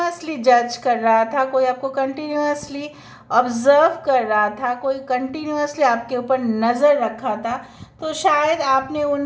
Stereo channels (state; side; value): identical; both; correlation 1.00